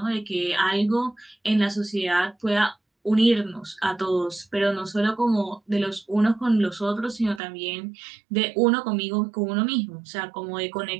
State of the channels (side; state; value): left; drops out; at 7.4 s